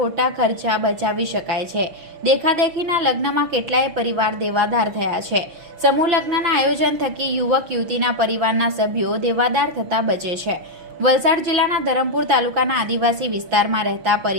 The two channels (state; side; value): late; left; 6.1 ms